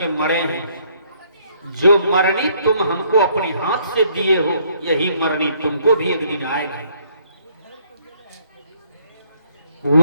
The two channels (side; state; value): both; inverted; correlation -0.65